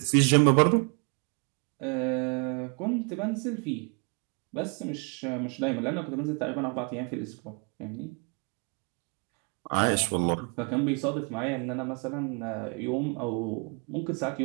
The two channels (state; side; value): quieter; left; 35.7 dB